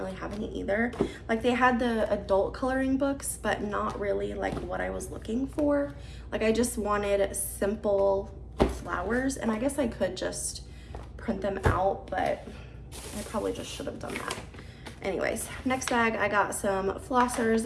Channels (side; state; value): both; identical; correlation 1.00